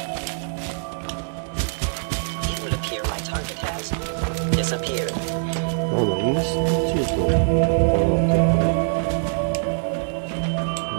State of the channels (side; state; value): left; silent; digital silence